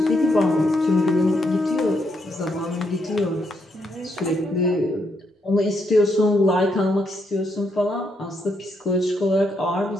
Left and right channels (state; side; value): normal; both; correlation 0.77